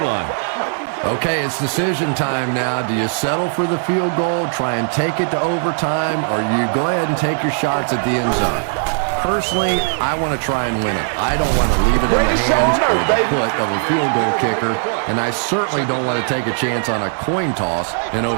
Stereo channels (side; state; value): left; silent; digital silence